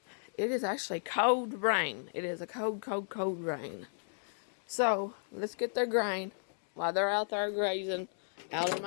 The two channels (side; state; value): right; silent; digital silence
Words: it is actually cold rain. It is a cold rain. So, let's get their grain while they're out there grazing, out of